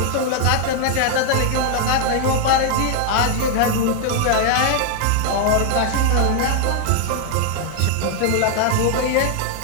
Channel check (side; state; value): both; different; correlation 0.00